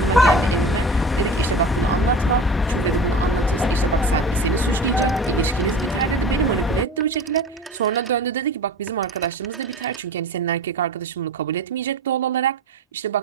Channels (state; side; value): normal; both; correlation 0.35